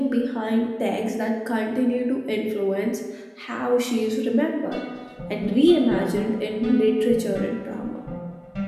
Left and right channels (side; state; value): both; identical; correlation 1.00